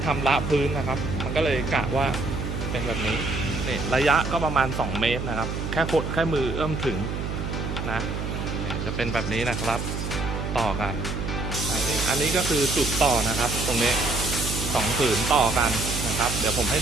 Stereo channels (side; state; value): right; noise; hum, 4 dB below the sound